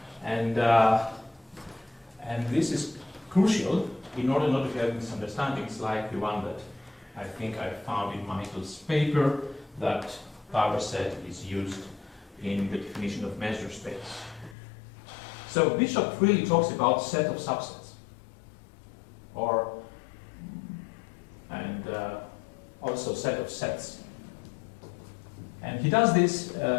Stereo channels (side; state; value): right; drops out; at 14.6 s